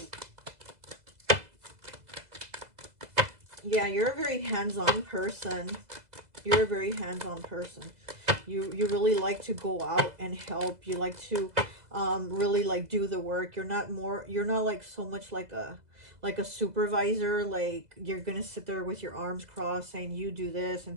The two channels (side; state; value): left; late; 2.0 ms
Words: Yeah, you're a very hands-on person. You're a very hands-on person. You really like to go out and help. You like to really like do the work. You're not like so much like a supervisor, like you're gonna sit there with your arms crossed saying you do this and